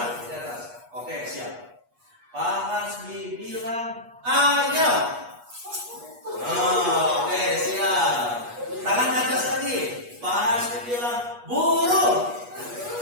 di atas. Oke, siap. Pak Hasbi bilang ayam. Oke, siap. Tangan ke atas lagi. Pak Hasbi bilang burung.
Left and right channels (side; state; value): left; late; 8.3 ms